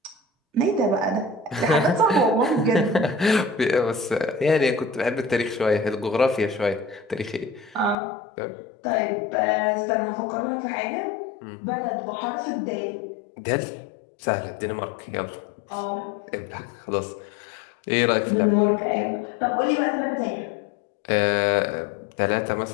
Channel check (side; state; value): right; drops out; at 8.0 s